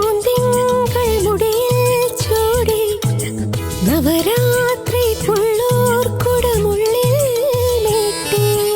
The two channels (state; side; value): identical; both; correlation 1.00